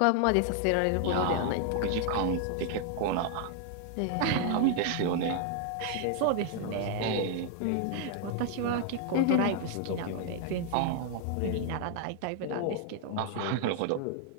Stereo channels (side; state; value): both; different; correlation 0.00